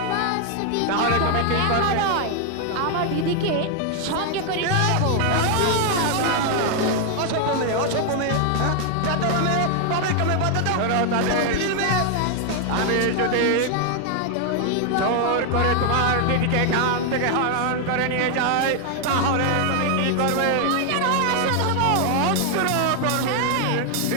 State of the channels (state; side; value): different; both; correlation 0.00